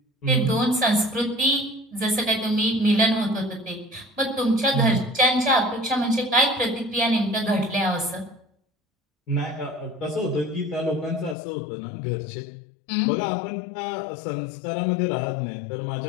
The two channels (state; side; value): drops out; right; at 11.4 s